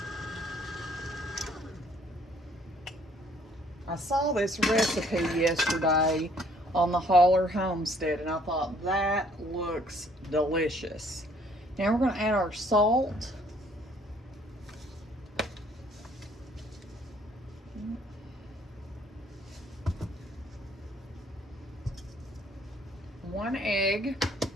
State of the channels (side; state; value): both; normal; correlation 0.62